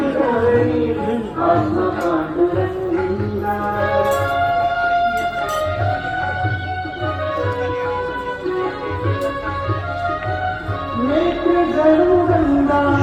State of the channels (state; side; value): identical; both; correlation 1.00